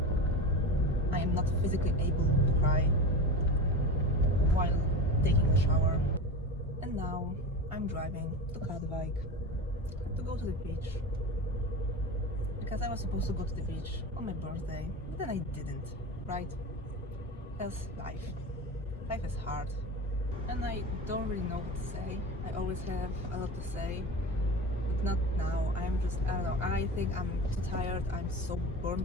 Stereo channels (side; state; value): both; normal; correlation 0.27